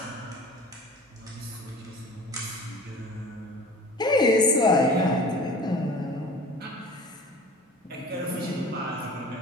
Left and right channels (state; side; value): normal; both; correlation 0.42